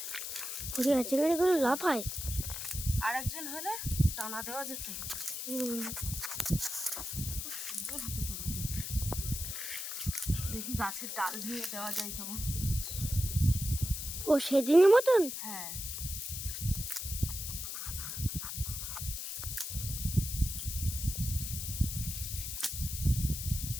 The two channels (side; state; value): left; noise; hiss, 5 dB below the sound